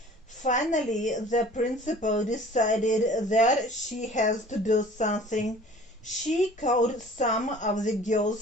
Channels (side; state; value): both; normal; correlation 0.48